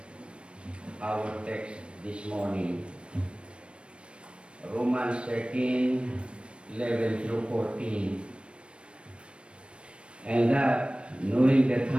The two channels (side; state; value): left; late; 0.058 ms